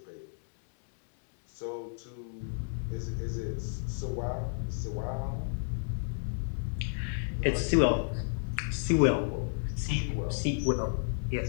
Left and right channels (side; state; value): right; silent; digital silence